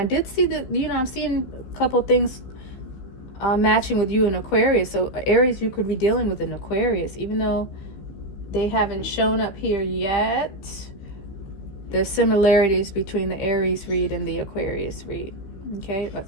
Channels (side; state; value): right; late; 15 ms